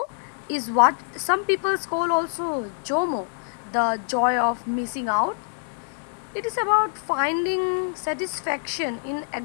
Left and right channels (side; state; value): right; silent; digital silence